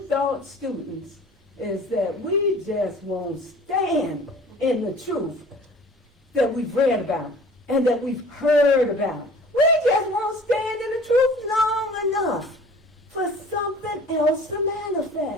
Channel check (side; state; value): both; normal; correlation 0.46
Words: Thought students is that we just won't stand in the truth that we've read about and that we've heard about. We just won't stand in the truth long enough for something else to